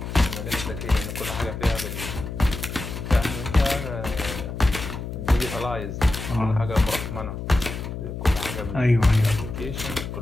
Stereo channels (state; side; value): noise; left; hum, 7 dB below the sound